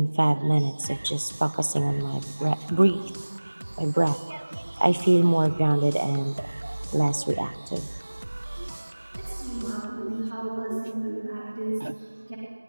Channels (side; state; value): both; inverted; correlation -1.00